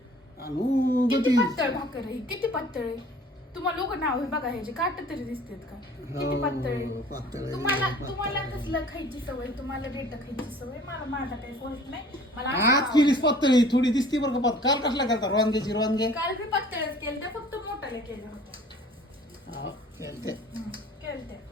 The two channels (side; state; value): both; normal; correlation 0.50